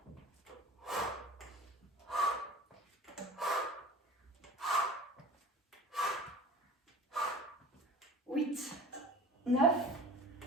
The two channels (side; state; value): both; normal; correlation 0.41